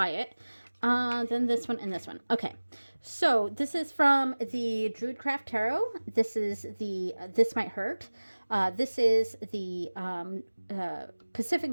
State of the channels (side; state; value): both; inverted; correlation -1.00